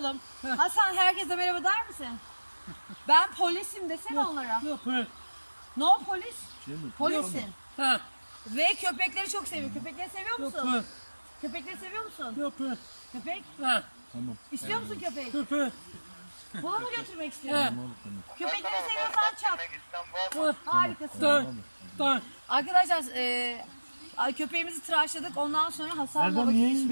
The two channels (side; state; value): both; inverted; correlation -1.00